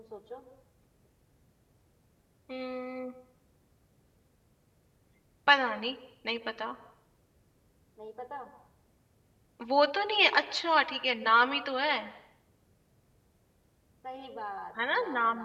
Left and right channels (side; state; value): both; identical; correlation 1.00